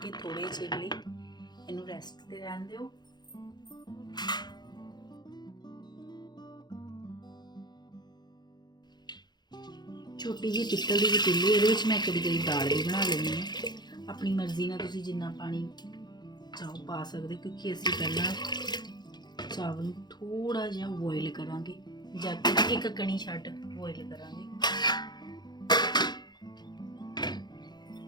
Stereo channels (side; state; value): right; late; 0.21 ms